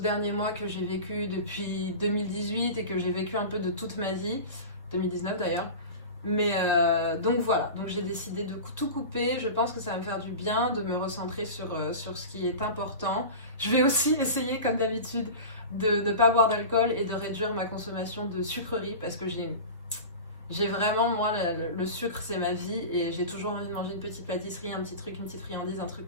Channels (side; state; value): both; inverted; correlation -0.31